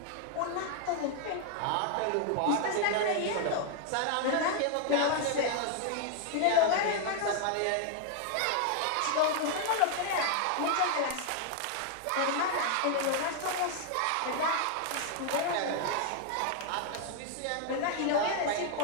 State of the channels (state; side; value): different; both; correlation 0.00